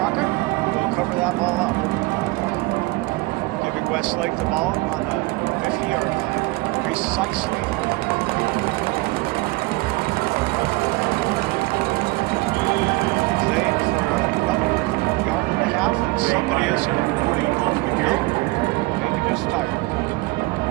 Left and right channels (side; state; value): left; quieter; 22.9 dB